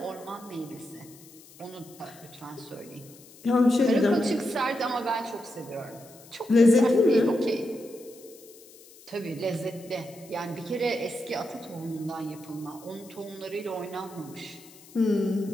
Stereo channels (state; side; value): noise; left; hiss, 22 dB below the sound